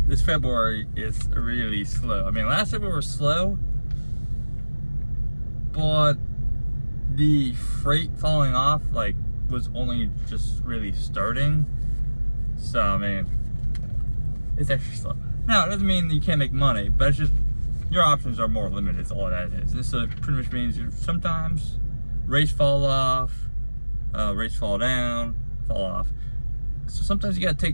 this February is really slow. I mean, last February was slow, but the freight falling off, was only just really starting. So, I mean, it's extra slow. Now, it doesn't mean you can't make money, but it's just, your options are more limited, is all that is. And so, it pretty much means sometimes rates fall off, rates fall down, fall off. So sometimes you gotta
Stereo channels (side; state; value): both; inverted; correlation -1.00